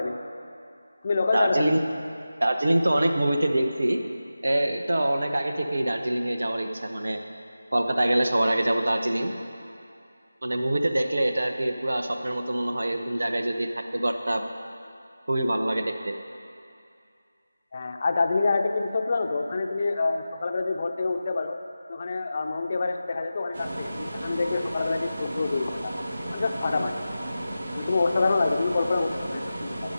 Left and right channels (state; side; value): inverted; both; correlation -0.94